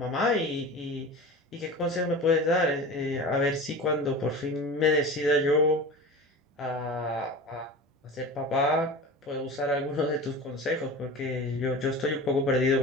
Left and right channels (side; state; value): both; normal; correlation 0.33